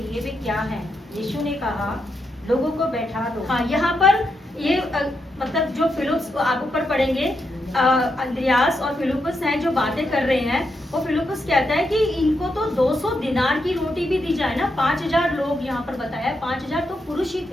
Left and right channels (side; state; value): both; normal; correlation 0.83